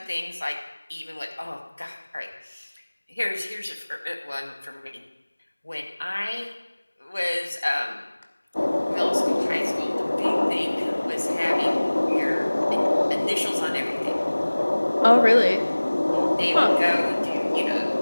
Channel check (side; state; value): both; inverted; correlation -1.00